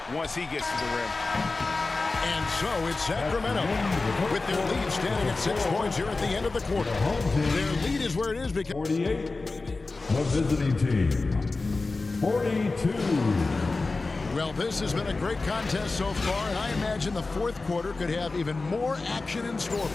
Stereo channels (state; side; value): quieter; right; 3.6 dB